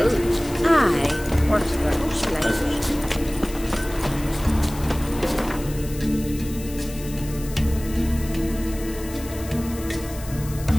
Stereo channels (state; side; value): noise; left; hiss, 15 dB below the sound